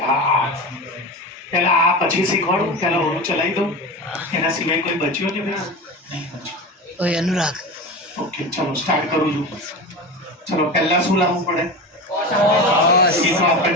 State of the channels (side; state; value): both; normal; correlation 0.27